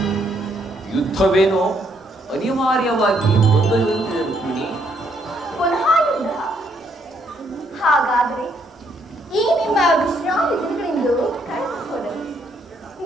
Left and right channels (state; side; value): normal; both; correlation 0.72